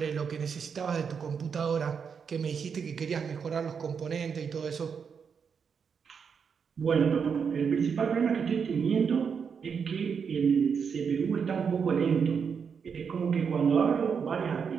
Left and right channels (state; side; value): quieter; left; 6.4 dB